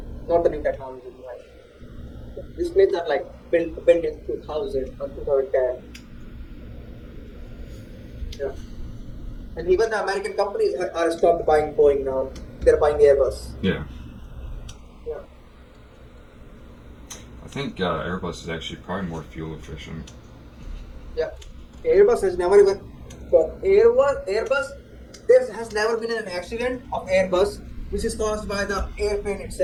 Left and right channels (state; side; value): identical; both; correlation 1.00